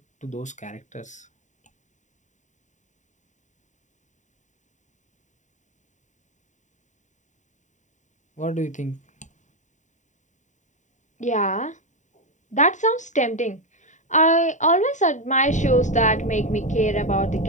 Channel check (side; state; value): right; late; 0.35 ms